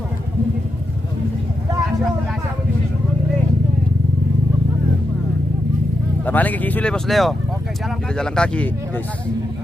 Paling kaki sulit Bos Leo. Oke, jalan Kita jalan kaki, guys.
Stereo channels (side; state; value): right; noise; hum, 18 dB below the sound